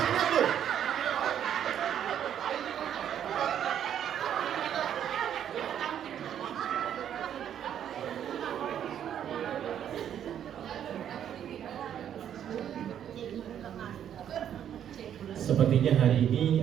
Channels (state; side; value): quieter; left; 9.7 dB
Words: kuat loh. Sepertinya hari